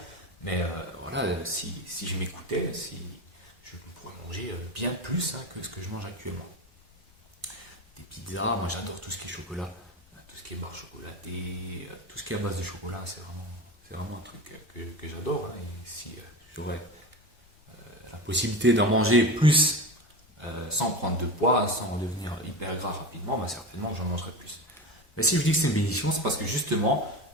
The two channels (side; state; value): left; noise; rumble, 29 dB below the sound